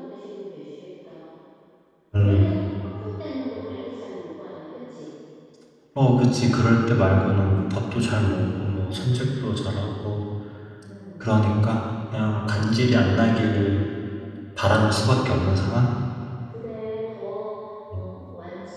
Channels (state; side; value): identical; both; correlation 1.00